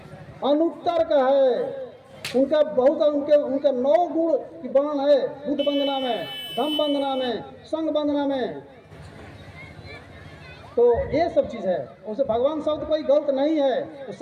अनुत्तर का है। उनका बहुत उनके 9 गुण की वर्णन है बुद्ध वंदना में, धम्म वंदना में, संघ वंदना में। तो ये सब चीज़ है। उसे भगवान शब्द कोई गलत नहीं है, वो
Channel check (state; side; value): identical; both; correlation 1.00